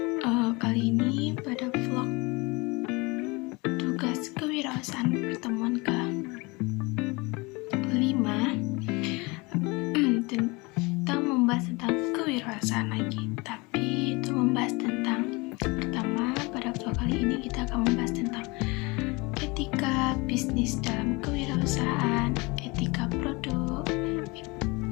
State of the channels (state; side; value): quieter; right; 25.8 dB